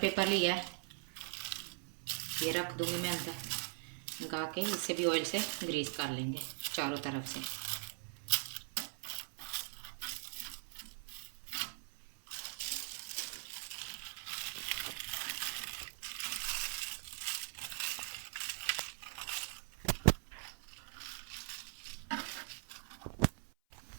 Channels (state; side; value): silent; left; 50 dB below the other